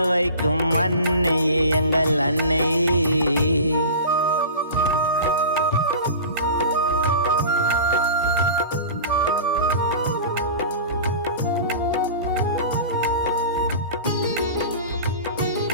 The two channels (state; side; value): inverted; both; correlation -0.36